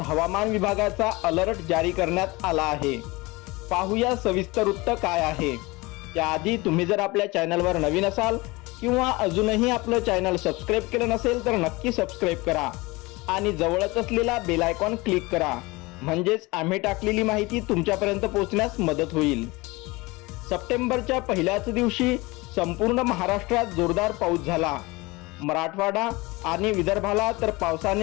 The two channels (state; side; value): quieter; right; 23.2 dB